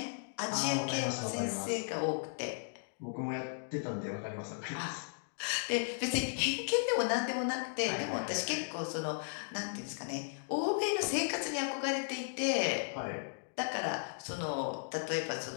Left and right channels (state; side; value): silent; right; digital silence